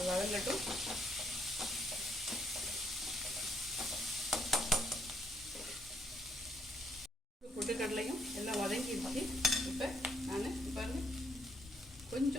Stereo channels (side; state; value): both; normal; correlation 0.71